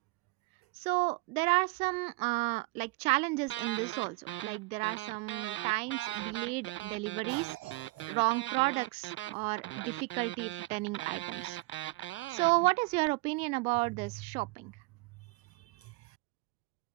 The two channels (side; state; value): left; quieter; 23.6 dB